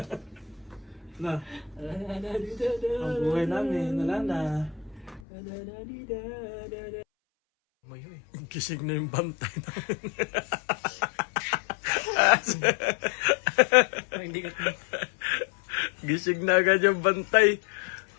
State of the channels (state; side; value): drops out; right; at 5.2 s